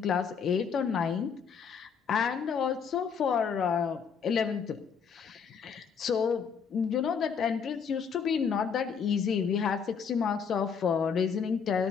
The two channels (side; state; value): right; quieter; 6.5 dB